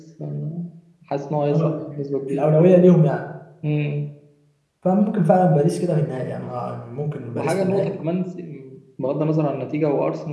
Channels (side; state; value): both; identical; correlation 1.00